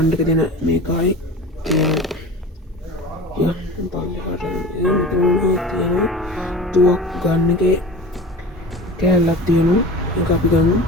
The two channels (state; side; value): normal; both; correlation 0.36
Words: එක දෙන මේකයි. තුවක් ගන්න එකේ කෑල්ලක් තියෙනවා. ඒක අපි ගමු.